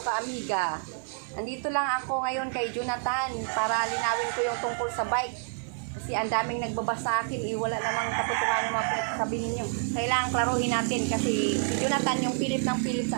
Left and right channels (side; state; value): left; silent; 57 dB below the other